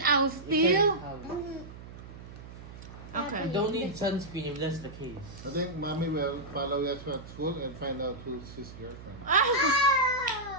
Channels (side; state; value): right; noise; hum, 15 dB below the sound